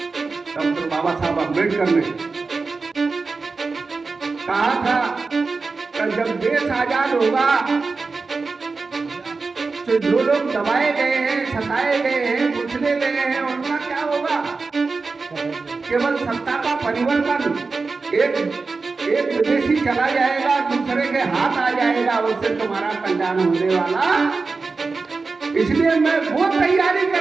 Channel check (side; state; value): left; quieter; 4.2 dB